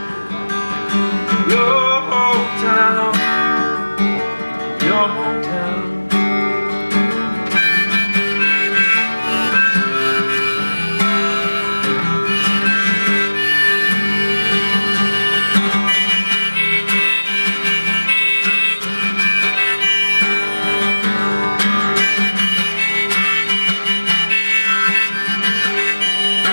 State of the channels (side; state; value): both; inverted; correlation -1.00